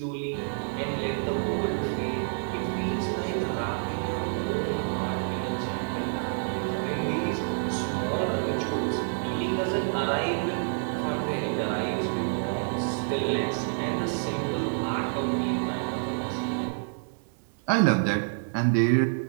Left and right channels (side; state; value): left; silent; digital silence